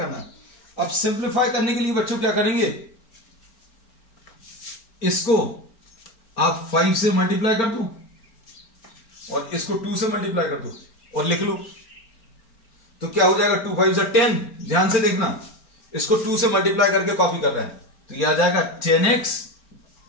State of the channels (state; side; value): late; right; 4.4 ms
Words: है। अब सिंप्लीफाई करने के लिए बच्चों क्या करेंगे, इसको आप 5 से मल्टीप्लाई कर दो और इसको 2 से मल्टीप्लाई कर दो और लिख लो, तो क्या हो जाएगा 2 5 से 10। ध्यान से देखना, इसको 2 से मल्टीप्लाई करके कॉपी कर रहे हैं, तो यह आ जाएगा